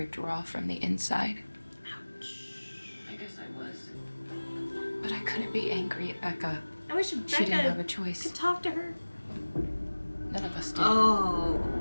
raw from the inside. Ouch. I guess I was. But I couldn't be angry at Becca. I wish She didn't have Becca a choice. could talk to her. None of us did. Oh.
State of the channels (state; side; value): inverted; both; correlation -1.00